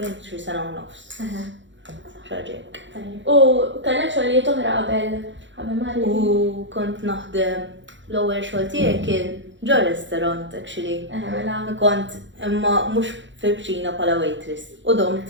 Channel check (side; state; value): left; late; 0.54 ms